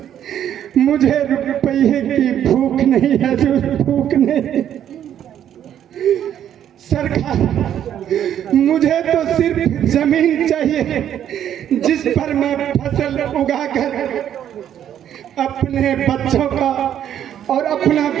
मुझे रुपये की भूख नहीं हजूर, भूख नहीं। सरकार, मुझे तो सिर्फ जमीन चाहिए जिस पर मैं फसल उगाकर अपने बच्चों का और अपना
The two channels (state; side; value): quieter; left; 10.2 dB